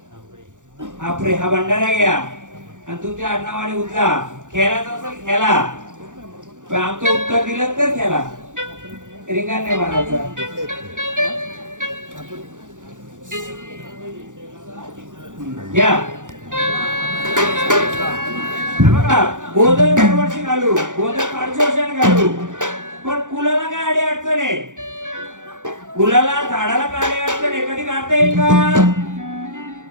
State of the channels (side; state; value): left; late; 0.87 ms